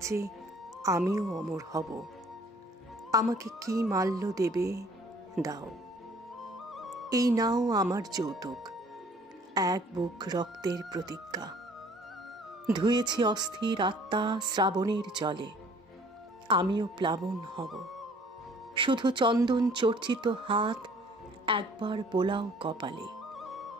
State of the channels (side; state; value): both; normal; correlation 0.55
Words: আমিও অমর হব। আমাকে কি মাল্য দেবে দাও। এই নাও আমার যৌতুক, এক বুক রক্তের প্রতিজ্ঞা। ধুয়েছি অস্থির আত্মা শ্রাবণের জলে, আমিও প্লাবন হব। শুধু চন্দন চর্চিত হাত একবার বোলাও কপালে।